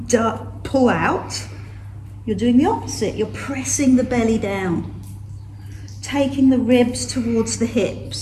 pull out. You're doing the opposite. You're pressing the belly down. Taking the ribs towards the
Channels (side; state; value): both; identical; correlation 1.00